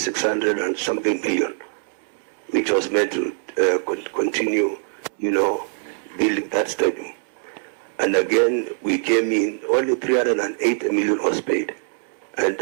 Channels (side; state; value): left; silent; 64 dB below the other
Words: and something million, which was meant to continue, building that stadium. And again, we came in, only 308 million was paid. And